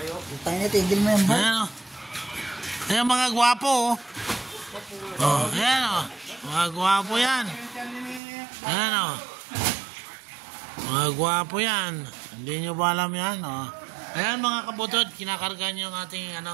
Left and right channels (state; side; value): drops out; left; at 8.2 s